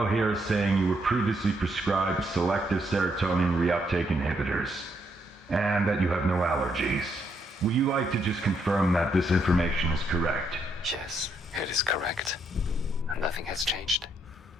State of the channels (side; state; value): both; normal; correlation 0.75